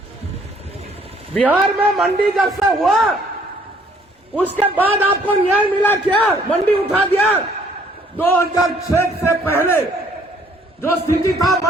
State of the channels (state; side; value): normal; both; correlation 0.62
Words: बिहार में मंडी जब से हुआ उसके बाद आपको न्याय मिला क्या? मंडी उठा दिया। 2006 से पहले जो स्थिति था,